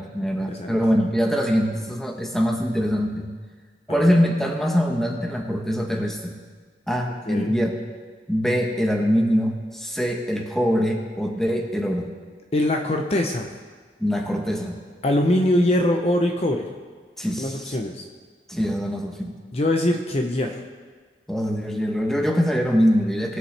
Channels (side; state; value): both; normal; correlation 0.86